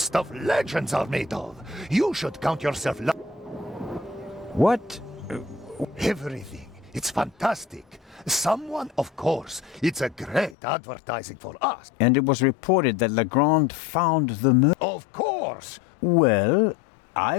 legends are made of. You should count yourself What? Everything. It's fantastic. Someone, of course. It's a great advertising for us. And it was reported that Legrand found the murder. Of course. Well, I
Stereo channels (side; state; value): right; drops out; at 10.6 s